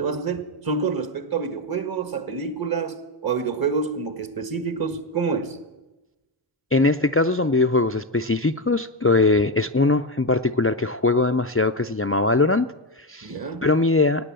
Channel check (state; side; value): normal; both; correlation 0.11